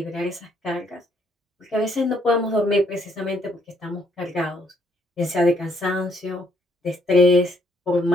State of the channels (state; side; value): normal; both; correlation 0.69